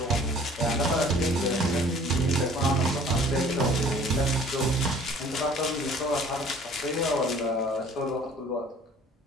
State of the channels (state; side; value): normal; both; correlation 0.51